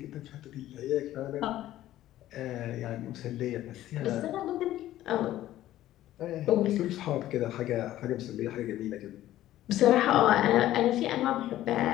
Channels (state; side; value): quieter; right; 13.9 dB